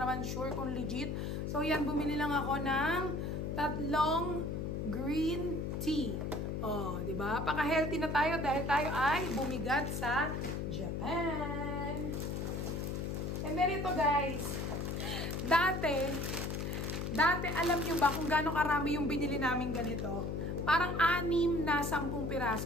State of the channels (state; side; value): noise; left; hum, 2 dB below the sound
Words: sure kung legit. So, yan, bumili lang ako ng 3 green tea. Oh, di ba? Paka-healthy na tayo dahil tayo ay bumigat sa Japan. And then ito guys, dati alam nyo ba kung gaano karami yung binili namin ganito? Parang 6 na 10